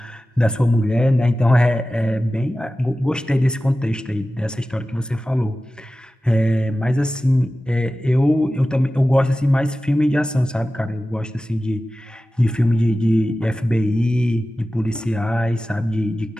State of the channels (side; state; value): both; normal; correlation 0.95